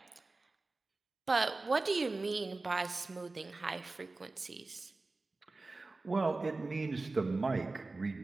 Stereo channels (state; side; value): quieter; left; 3.4 dB